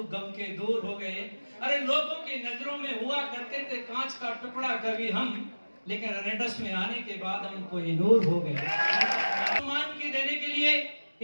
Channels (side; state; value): both; inverted; correlation -1.00